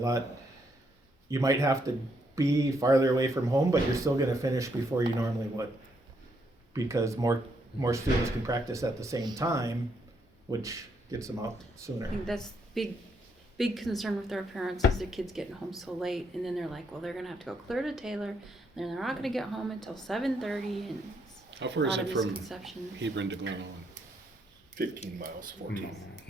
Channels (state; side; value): normal; both; correlation 0.75